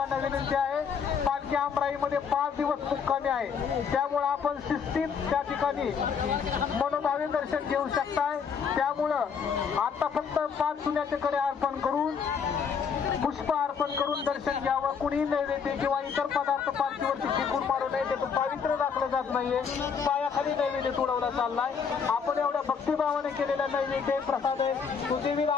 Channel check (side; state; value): right; quieter; 6.4 dB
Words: विनंती आहे. पालखी आमराईमध्ये 5 दिवस मुक्कामी आहे, त्यामुळं आपण शिस्तीत त्या ठिकाणी मनोभावे दर्शन घेऊ शकताय. त्यामुळं आता फक्त 5 चुन्याचे कडे अर्पण करून, पुष्प अर्पण करून दर्शन घ्यावं. कुणी नैवेद्य किंवा इतर पदार्थ पालखीवरती फेकून मारू नये, त्याचं पावित्र्य राखलं जात नाहीये. पायाखाली नैवेद्य तुडवला चाललाय. आपण एवढ्या भक्तिभावाने केलेला नैवेद्य प्रसाद आहे, तो देवीला